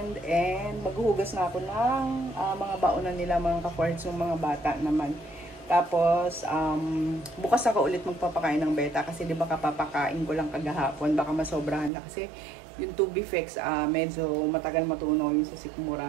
And maghuhugas na ako ng mga baonan nila mga ka-foreheads, yung mga bata naman. Tapos, bukas ako ulit magpapakain ng beta kasi di ba kapapakain ko lang kagahapon, baka masobrahan na kasi yung Tubifex, medyo matagal matunaw yung sa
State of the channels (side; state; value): left; drops out; at 11.9 s